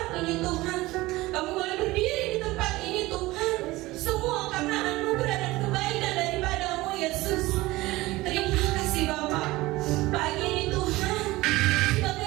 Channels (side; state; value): left; quieter; 19.4 dB